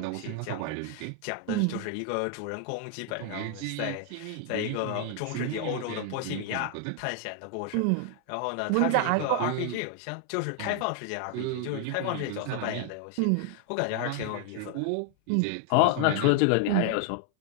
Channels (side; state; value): both; different; correlation 0.00